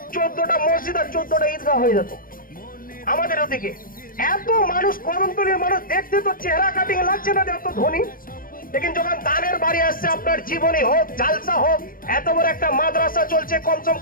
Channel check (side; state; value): right; late; 0.41 ms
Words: 14টা মসজিদ আর 14টা ঈদগাহ হয়ে যেত আমাদের ওদিকে। এত মানুষ, কদমতলীর মানুষ দেখতে তো চেহারা কাটিং লাগছে না এত ধনী, लेकिन যখন দানের বাড়ি আসছে, আপনার জীবনী হোক, জালসা হোক, এত বড় একটা মাদ্রাসা চলছে, কমসম